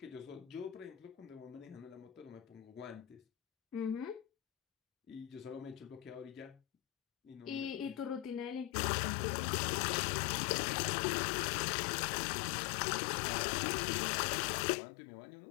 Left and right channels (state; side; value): drops out; right; at 8.7 s